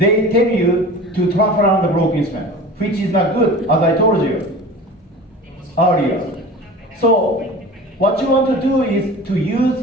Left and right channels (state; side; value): normal; both; correlation 0.37